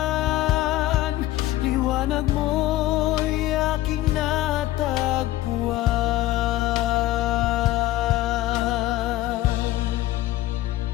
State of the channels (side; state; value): right; quieter; 15.6 dB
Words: liwanag mo'y aking natagpuan.